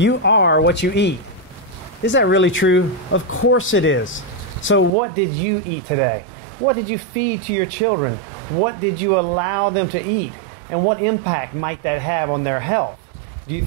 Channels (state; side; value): drops out; left; at 4.9 s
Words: are what you eat. Is that really true? Of course it is. So what did you eat today? What did you feed to your children? What did you allow them to eat? And what impact might that have on their health? Do you